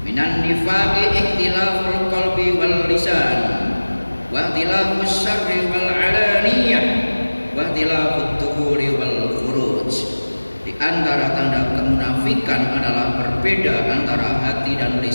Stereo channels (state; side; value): inverted; both; correlation -1.00